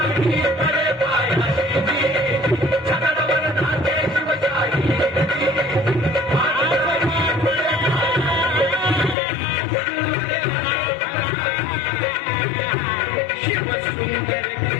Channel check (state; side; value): drops out; right; at 9.2 s